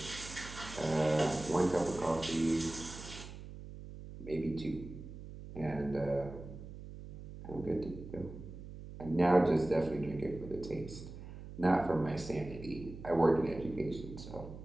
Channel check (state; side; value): noise; right; hum, 12 dB below the sound